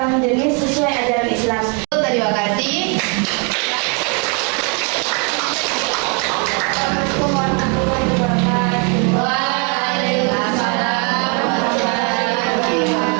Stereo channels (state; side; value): quieter; left; 35.8 dB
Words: jenis sesuai ajaran Islam. Terima kasih. Assalamualaikum warahmatullahi wabarakatuh. Waalaikumsalam warahmatullahi